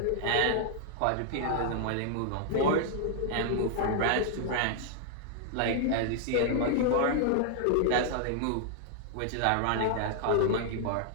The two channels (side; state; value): both; different; correlation 0.00